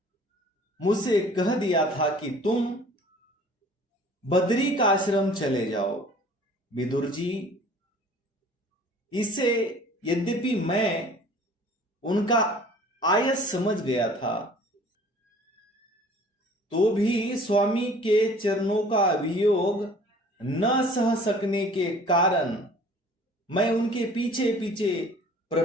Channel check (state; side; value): normal; both; correlation 0.50